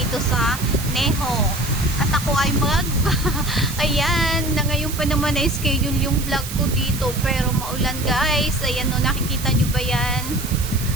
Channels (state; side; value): noise; right; hiss, 10 dB below the sound